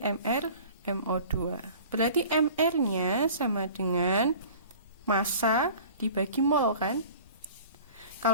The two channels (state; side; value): inverted; both; correlation -0.44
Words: MO2. Berarti MR-nya sama dengan massa dibagi mol kan?